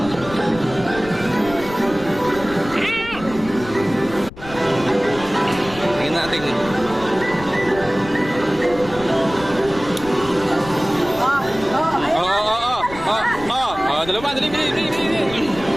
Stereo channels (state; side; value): noise; left; rumble, 15 dB below the sound